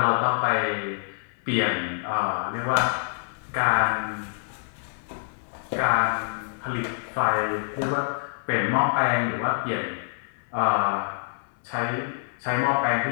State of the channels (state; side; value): silent; right; 61 dB below the other